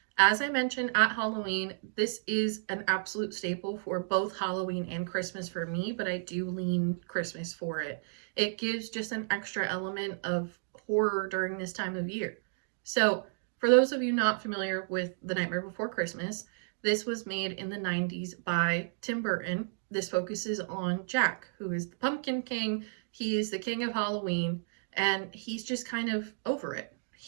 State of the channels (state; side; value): silent; left; digital silence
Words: As I mentioned at Halloween, this is an absolute staple for both Halloween and Christmas for me, but I do lean Christmas for it. It gives just an extra element of horror during this time of year. So, for those of you not familiar with The Nightmare Before Christmas, this was made in the 90s by Tim Burton. This focuses on Jack, who is the Pumpkin King. He is the king of Halloween, and he's just kind of over it.